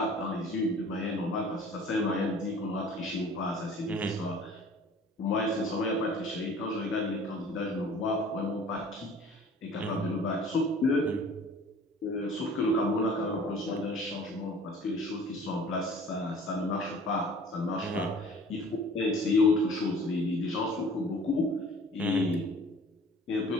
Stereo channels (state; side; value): normal; both; correlation 0.48